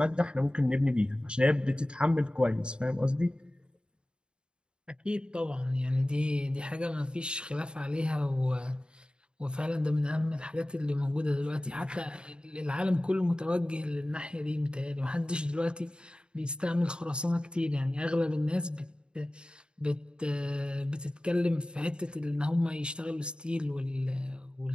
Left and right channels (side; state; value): left; late; 0.051 ms